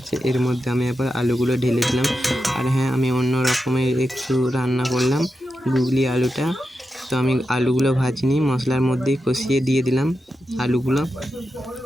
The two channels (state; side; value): normal; both; correlation 0.89